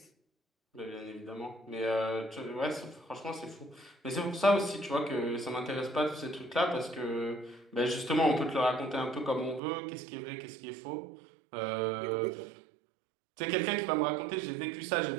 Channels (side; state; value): left; drops out; at 9.6 s